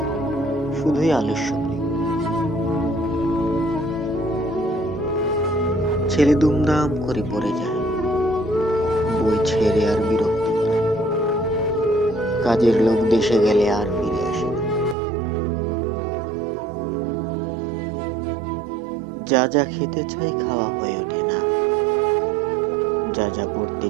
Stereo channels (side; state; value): left; drops out; at 15.0 s